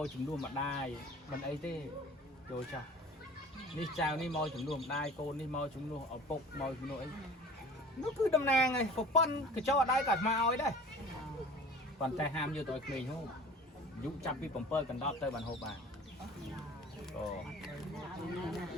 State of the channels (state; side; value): normal; both; correlation 0.43